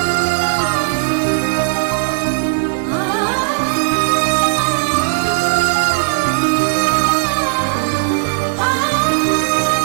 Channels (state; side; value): silent; left; 65 dB below the other